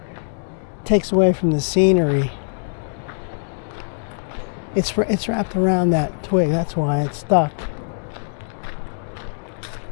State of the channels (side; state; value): right; silent; 64 dB below the other